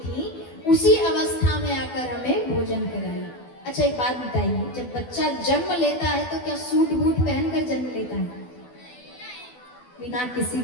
उसी अवस्था में आकर हमें भोजन कराइए। अच्छा एक बात बताइए, जब बच्चा जन्म लेता है तो क्या सूट बूट पहनकर जन्म लेता है? बिना किसी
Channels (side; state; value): right; late; 12 ms